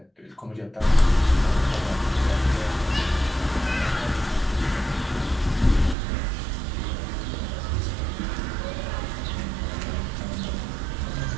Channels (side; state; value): left; drops out; at 6.0 s